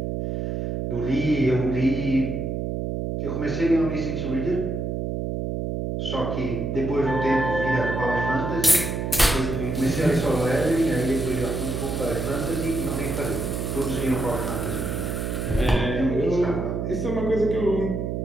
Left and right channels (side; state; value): right; noise; hum, 2 dB below the sound